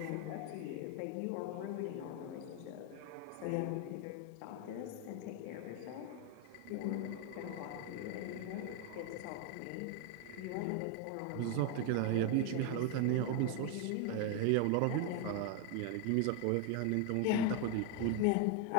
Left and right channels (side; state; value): both; different; correlation 0.01